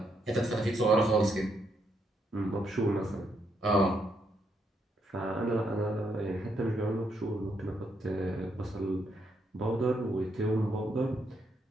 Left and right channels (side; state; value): both; normal; correlation 0.77